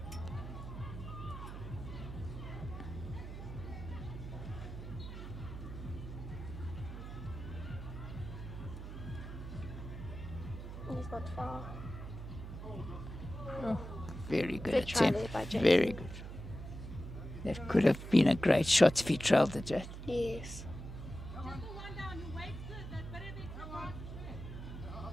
He's not far. Very good Good try attempt. there by Jason. Very good. That could have been a great shot if he trailed the jet. Yes.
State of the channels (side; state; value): right; noise; hum, 9 dB below the sound